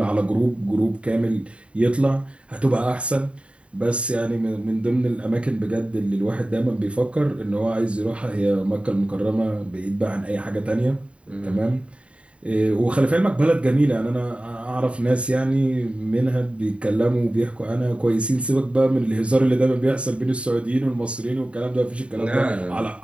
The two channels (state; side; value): late; left; 0.061 ms